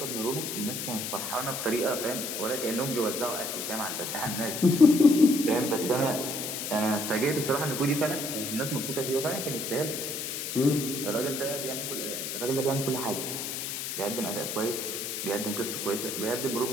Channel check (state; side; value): noise; left; hiss, 4 dB below the sound